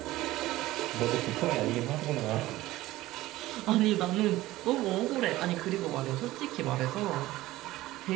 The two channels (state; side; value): quieter; left; 16.9 dB